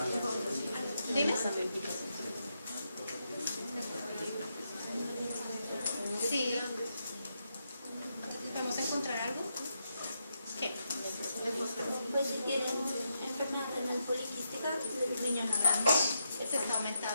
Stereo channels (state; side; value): inverted; both; correlation -0.82